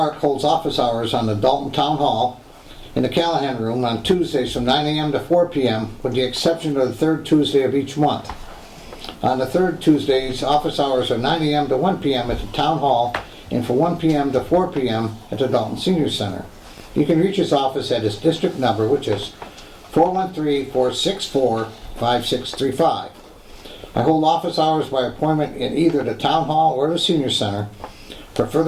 holds office hours on the Dalton Town Hall in the Callahan Room on Tuesdays from 9 a.m. to 4 p.m., with the exception of the third Tuesday of each month. On the third Tuesdays, office hours are 9 a.m. to 1 p.m. at the Town Hall and from 1 p.m. to 4 p.m. at the Dalton Senior Center. You can reach his office at his district number, which is 413-464-5635. I hold office hours by appointment in either the Town Hall or the Senior Center. For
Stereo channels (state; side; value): identical; both; correlation 1.00